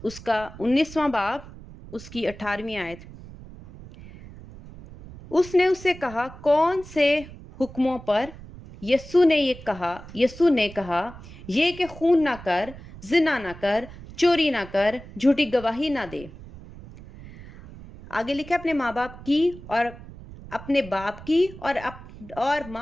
اس کا 19واں باب، اس کی 18ویں آیت، اس نے اس سے کہا، کون سے حکموں پر؟ یسوع نے کہا، یہ کہ خون نہ کر، زنا نہ کر، چوری نہ کر، جھوٹی گواہی نہ دے۔ آگے لکھا، اپنے ماں باپ کی اور اپنے باپ کی اور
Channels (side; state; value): right; noise; rumble, 16 dB below the sound